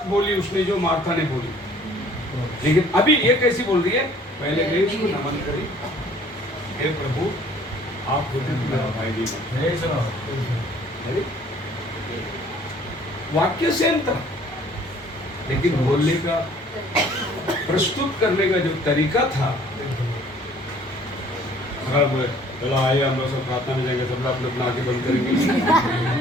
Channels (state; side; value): normal; both; correlation 0.55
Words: बोली उसने जो मार्था ने बोली, लेकिन अभी ये कैसी बोल रही है? पहले गई उसको नमन करी, हे प्रभु आप होते तो मेरा भाई नहीं मरता। अरे, वाक्य सेम था, लेकिन बोलने का, प्रस्तुत करने का जो तरीका था। अगर बोले चलो आइए हम लोग सब प्रार्थना में जाएंगे, सब लोग अपना आंखें बंद करेंगे।